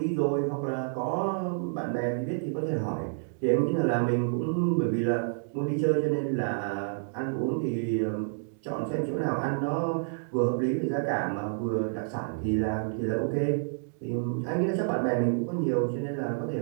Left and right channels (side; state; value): left; silent; digital silence